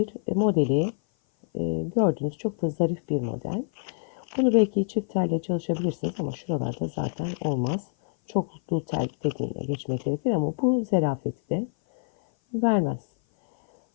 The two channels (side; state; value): right; silent; 56 dB below the other